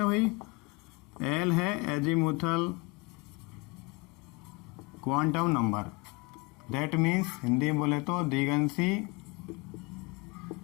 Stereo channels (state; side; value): quieter; right; 26.7 dB